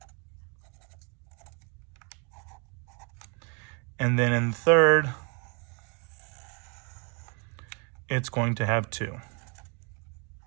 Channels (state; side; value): quieter; left; 34.1 dB